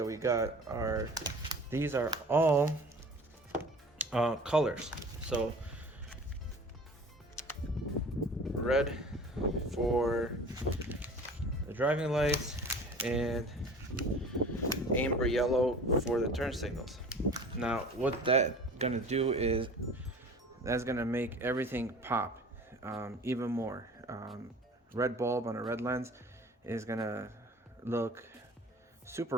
we got are, these are all colors. So red for the driving lights and amber yellow for the turn signals. Now what that's gonna do is that's gonna make everything pop even more. Red bulb on a red lens is gonna look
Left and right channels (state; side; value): normal; both; correlation 0.43